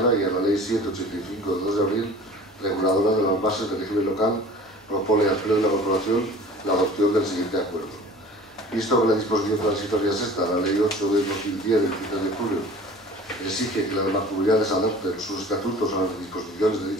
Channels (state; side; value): normal; both; correlation 0.43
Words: y a la Ley 785 de 2 de abril, reguladora de las bases del régimen local, propone al Pleno de la Corporación la adopción del siguiente acuerdo. Visto que la disposición transitoria sexta, la Ley 8 de 2010 del 23 de julio, exige que las mancomunidades adopten sus estatutos a las disposiciones de